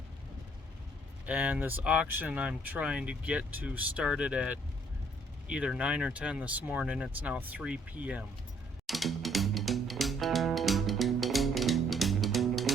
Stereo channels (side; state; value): both; normal; correlation 0.65